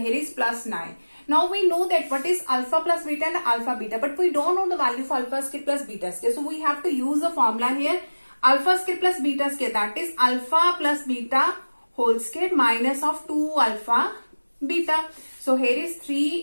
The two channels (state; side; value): inverted; both; correlation -1.00